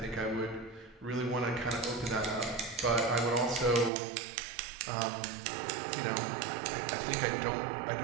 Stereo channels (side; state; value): left; drops out; at 3.9 s